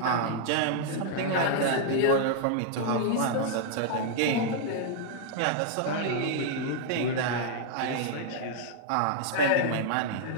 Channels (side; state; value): both; different; correlation -0.01